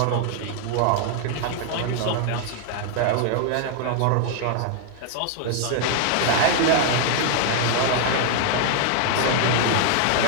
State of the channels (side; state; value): both; different; correlation 0.00